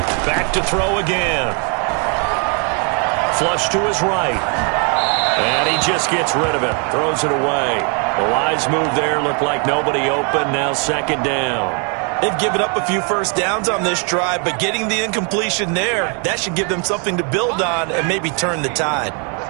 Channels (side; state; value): left; quieter; 38.4 dB